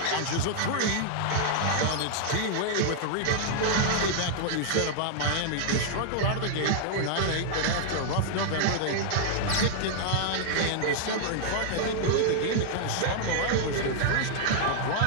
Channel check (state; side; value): different; both; correlation -0.01